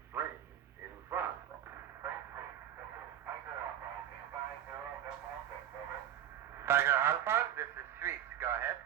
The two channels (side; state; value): left; quieter; 10.6 dB